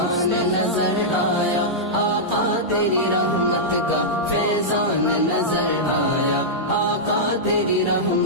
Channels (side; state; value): both; normal; correlation -0.10